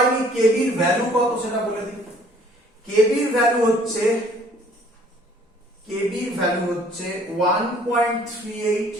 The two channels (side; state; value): both; normal; correlation 0.57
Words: কেবির ভ্যালু কত সেটা বলে দিই। কেবির ভ্যালু হচ্ছে 1.38